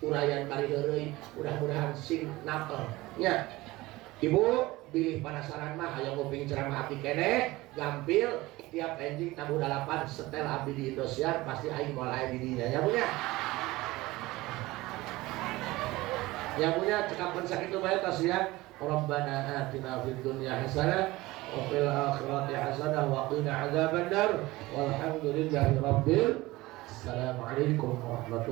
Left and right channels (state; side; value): quieter; left; 19.6 dB